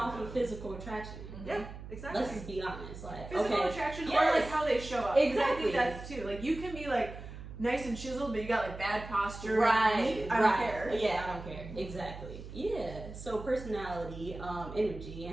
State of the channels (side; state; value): right; noise; hum, 12 dB below the sound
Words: off know. of physical attraction. Yeah, exactly. Let's just be honest. Like, Physical okay, attraction or Yes. like how they show up. 'Cause I Exactly. think that's too. Like you can be like nice and chiseled, but you got like bad posture. right, I don't care. Yeah, I don't care. Exactly. Yeah. So personality, energy,